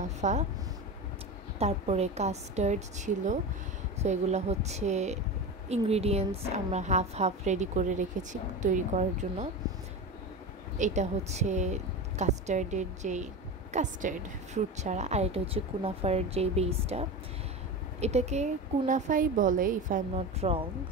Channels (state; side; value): normal; both; correlation 0.25